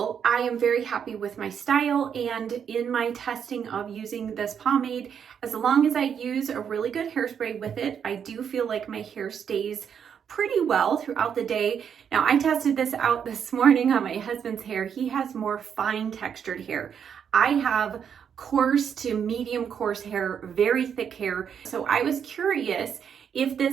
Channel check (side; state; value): left; quieter; 7.8 dB